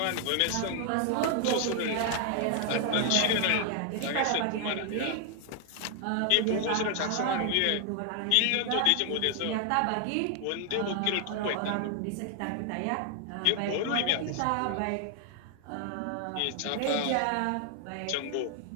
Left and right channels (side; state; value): both; different; correlation 0.00